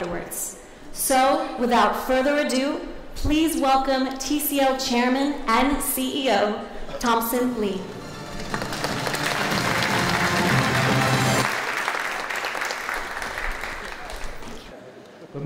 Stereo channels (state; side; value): identical; both; correlation 1.00